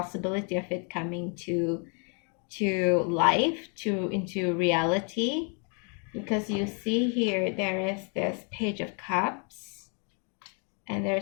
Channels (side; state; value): right; quieter; 38.5 dB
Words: of it coming to life, to into reality. Because you see here, there is this Page of Cups, and